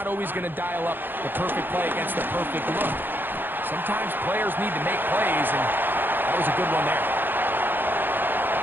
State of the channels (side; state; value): left; late; 0.095 ms